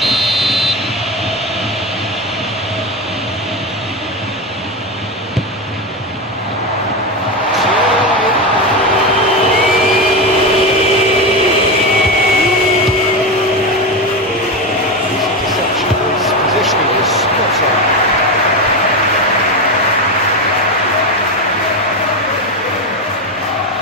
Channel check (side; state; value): both; normal; correlation 0.16